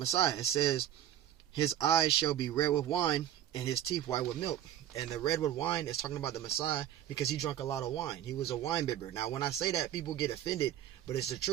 It says, his eyes shall be red with wine, and his teeth white with milk. And the red with wine is talking about the Messiah because he drank a lot of wine. He was a wine bibber. Now, when I say that, people get offended, but it's the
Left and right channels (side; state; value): left; quieter; 11.4 dB